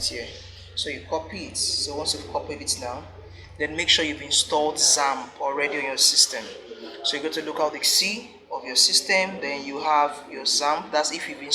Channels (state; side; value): identical; both; correlation 1.00